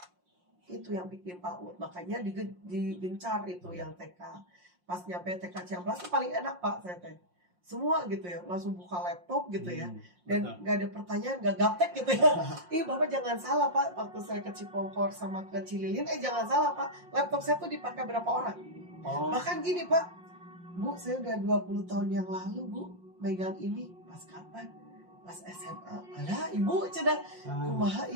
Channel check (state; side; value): late; left; 5.6 ms